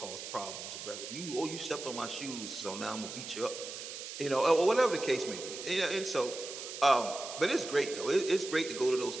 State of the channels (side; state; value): right; noise; hiss, 9 dB below the sound